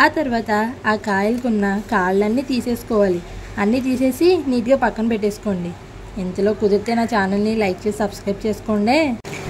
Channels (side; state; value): both; identical; correlation 1.00